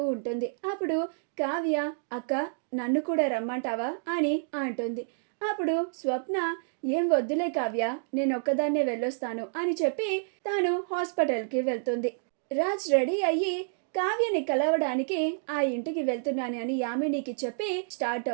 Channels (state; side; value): silent; left; digital silence